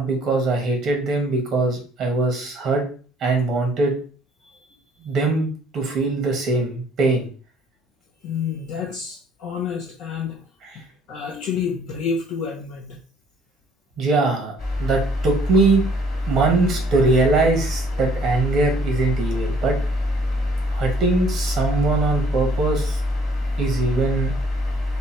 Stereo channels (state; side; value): normal; both; correlation 0.61